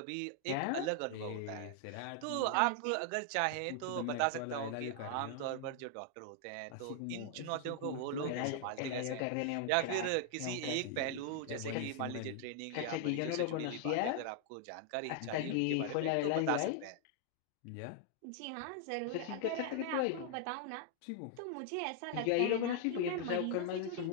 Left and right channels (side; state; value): both; different; correlation 0.00